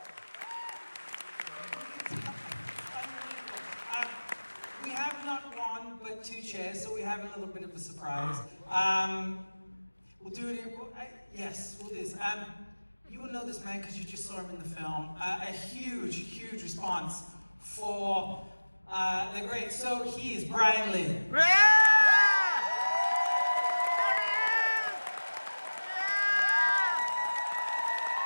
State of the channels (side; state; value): both; inverted; correlation -1.00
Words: We have not one, but 2 chairs, so we have a little bit of a surprise. We'll do it. Yes, we'll do this. You will know this man because you just saw him in the film. A huge, huge response for the great. So he is Brian Lee.